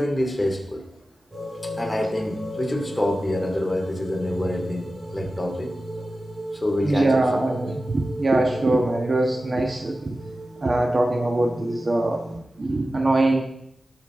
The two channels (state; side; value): normal; both; correlation 0.94